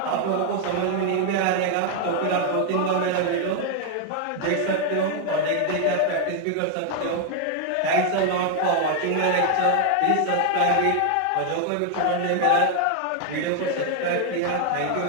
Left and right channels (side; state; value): both; different; correlation 0.00